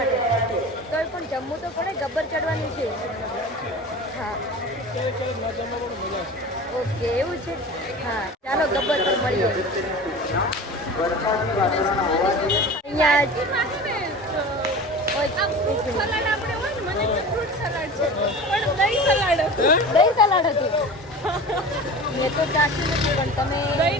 તોય પણ જમવું તો પડે, ગબ્બર ચડવાનું છે. હા, ઓકે, એવું છે. હા, ચાલો ગબ્બર પર મળીએ. દહીં સલાડ હતું. મેં તો ચાખ્યું નથી, પણ તમે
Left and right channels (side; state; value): both; normal; correlation 0.35